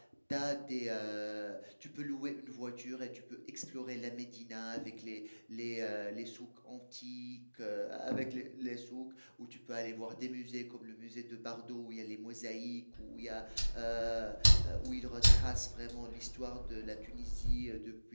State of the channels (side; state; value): both; inverted; correlation -1.00